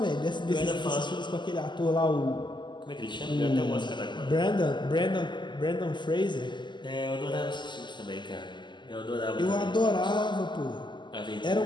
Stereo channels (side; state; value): right; late; 0.22 ms